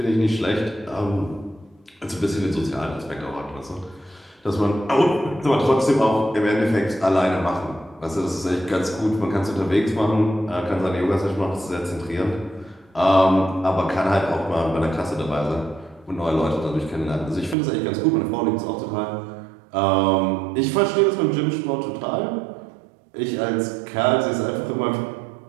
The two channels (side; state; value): left; drops out; at 17.6 s